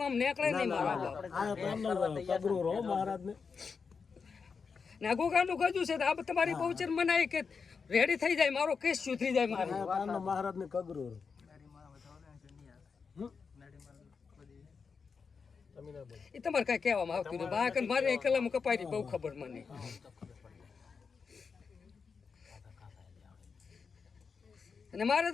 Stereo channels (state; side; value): quieter; right; 5.4 dB